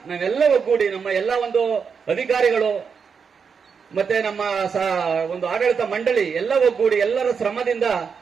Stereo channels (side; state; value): left; quieter; 6.1 dB